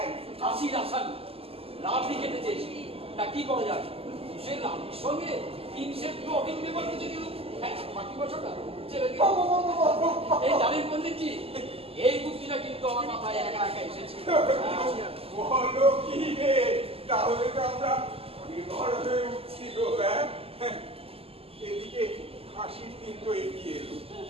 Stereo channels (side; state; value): left; late; 0.28 ms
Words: কাশির আসামি রাবড়ি খেতে চেয়েছি, তা কি করা যাবে? সে রাবড়ির সঙ্গে 3 সেট ব্লটিং পেপার কিছু দিল। বাকি বছরটা ছেড়ে দিল। এই জানেন পণ্ডিতজি, এই বুদ্ধিটা কিন্তু আমার মাথায় একা একা এসেছে। বলো কি রে, তাহলে তো আমরা নির্ভর হয়ে উঠছি গো। এদিকে হাসির দিন তো এগিয়ে এলো,